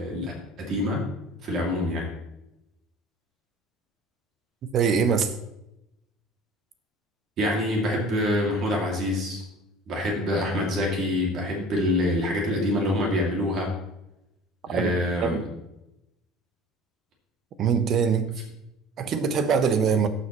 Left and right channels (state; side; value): normal; both; correlation 0.44